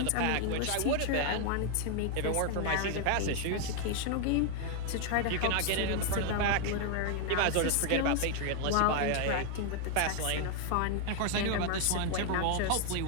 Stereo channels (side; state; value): both; different; correlation 0.00